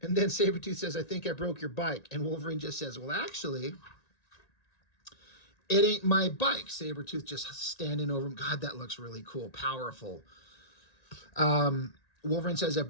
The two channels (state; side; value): late; right; 1.9 ms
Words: And then Sabertooth says, I think I broke your bike. And Wolverine just says, well, actually, it ain't my bike. Sabertooth just standing over him. God, that looks really cool, powerful. Wolverine says, I